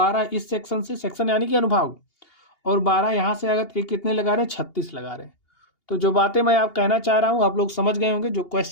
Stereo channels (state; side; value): late; right; 2.8 ms